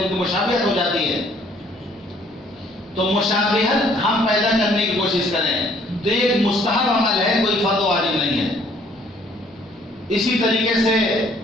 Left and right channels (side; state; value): both; normal; correlation 0.61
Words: ان کی مشابہت ہو جاتی ہے. تو مشابہت ہم پیدا کرنے کی کوشش کریں تو یہ ایک مستحب عمل ہے، کوئی فرض واجب نہیں ہے. اسی طریقے سے